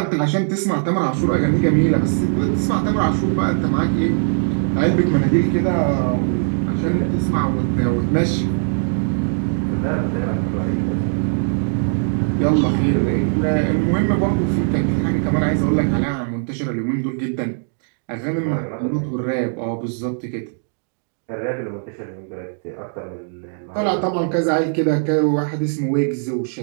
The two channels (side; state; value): left; silent; digital silence